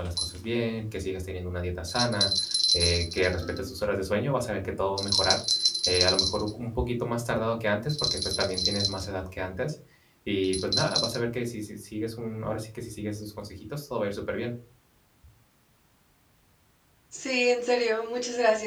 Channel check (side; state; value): both; identical; correlation 1.00